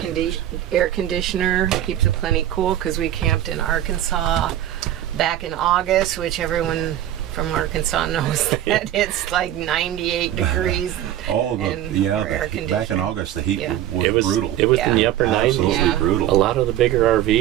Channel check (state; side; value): quieter; left; 12.2 dB